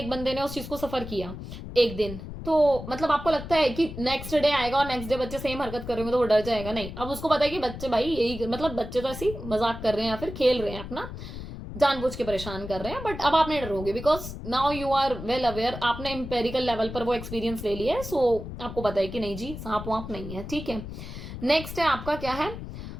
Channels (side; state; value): left; noise; rumble, 10 dB below the sound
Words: बंदे ने उस चीज को सफर किया एक दिन, तो मतलब आपको लगता है कि नेक्स्ट डे आएगा और नेक्स्ट डे बच्चे सेम हरकत करेंगे तो वो डर जाएगा, नहीं। अब उसको पता है कि बच्चे भाई यही, मतलब बच्चे तो ऐसी मजाक कर रहे हैं या फिर खेल रहे हैं, अपना जानबूझ के परेशान कर रहे हैं, बट अब आप नहीं डरोगे because now you are well aware, आपने एम्पेरिकल लेवल पर वो एक्सपीरियंस ले लिया है। आपको पता है कि नहीं जी सांप वाप नहीं है, ठीक है। नेक्स्ट है आपका क्या है,